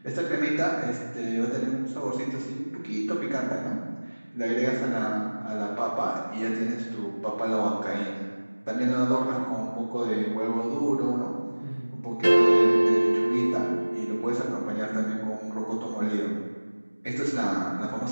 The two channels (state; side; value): inverted; both; correlation -1.00